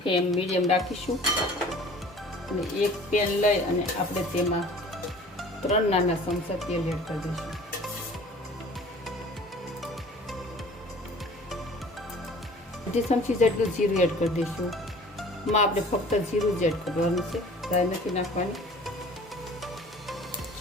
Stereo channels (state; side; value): normal; both; correlation 0.47